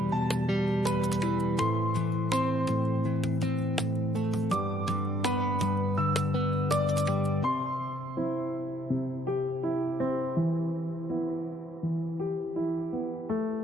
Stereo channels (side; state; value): both; normal; correlation 0.68